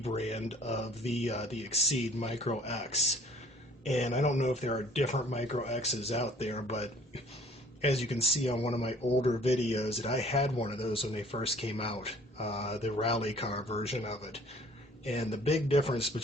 of the Exceed Micro X, and I don't know if there are different Micro X's out there, but as you can see on one of my older videos, that I had one of those when they first came out, the rally car version of it, and the big difference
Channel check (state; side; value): normal; both; correlation 0.55